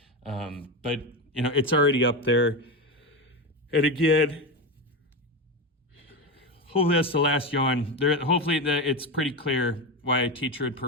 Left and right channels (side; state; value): both; normal; correlation 0.16